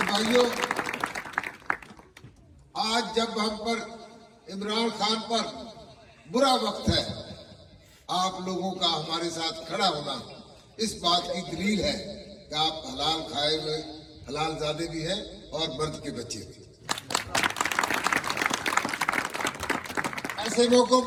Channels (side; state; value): both; identical; correlation 1.00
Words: भाइयों, आज जब हम पर इमरान खान पर बुरा वक्त है, आप लोगों का हमारे साथ खड़ा होना इस बात की दलील है कि आप हलाल खाए हुए हलाल ज़ादे भी हैं और मर्द के बच्चे भी। ऐसे मौकों